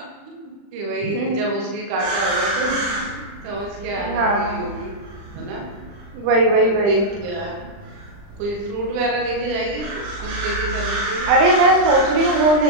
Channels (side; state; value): left; late; 40 ms